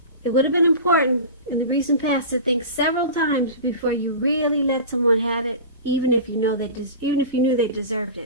it would have been important in the recent past to think several times before you really let someone have it, even if you knew they deserved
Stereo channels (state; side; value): inverted; both; correlation -0.32